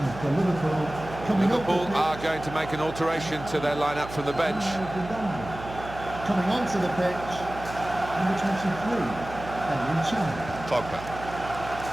for Liverpool. Coming up Liverpool the pitch, are going to make an alteration to their lineup from the bench. coming onto the pitch, number 23, Henry Chan. Pogba.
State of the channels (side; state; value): right; noise; hum, 12 dB below the sound